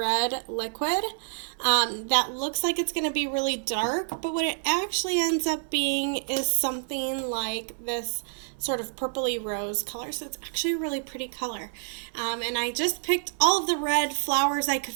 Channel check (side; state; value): left; silent; 60 dB below the other